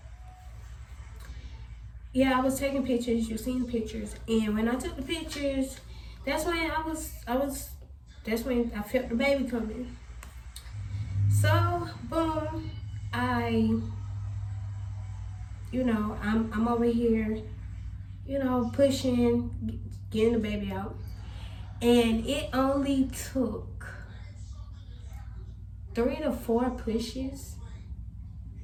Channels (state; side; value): identical; both; correlation 1.00